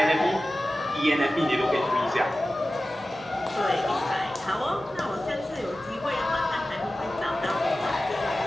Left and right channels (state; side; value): normal; both; correlation 0.95